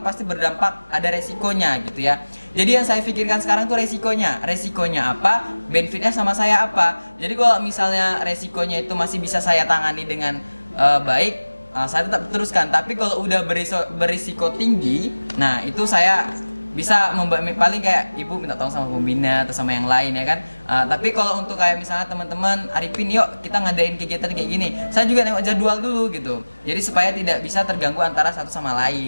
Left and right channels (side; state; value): both; inverted; correlation -1.00